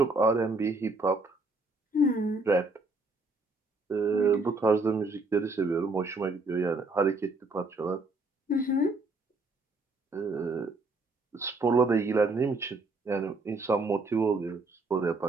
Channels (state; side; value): quieter; left; 3.2 dB